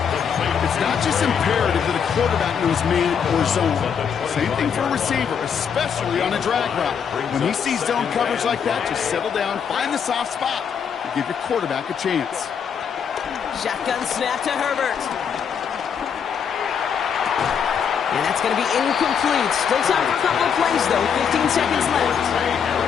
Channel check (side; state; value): right; quieter; 7.2 dB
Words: It's not just imperative that a quarterback knows man or zone. Same thing for a receiver, especially on a drag route. When he sees zone coverage like that, just settle down, find the soft spot, and give your quarterback a chance. Shotgun snap to Herbert. And that's going to be incomplete. Still time for a couple of plays, though. 15 seconds left.